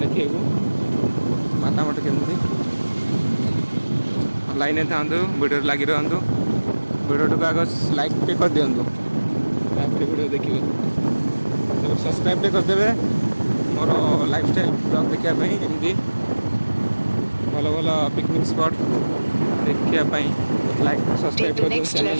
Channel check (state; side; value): inverted; both; correlation -1.00